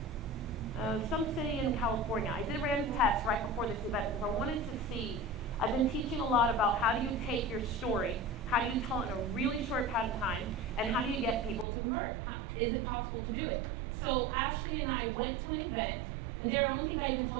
Some city in California. I ran a test right before this event because I wanted to see. I've been teaching a lot about how do you take your story, how do you tell it in a really short amount of time, and how do you get people to convert? Is it possible to do it? So Ashley and I went to an event, and Darren, I don't think I even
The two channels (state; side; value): drops out; left; at 11.7 s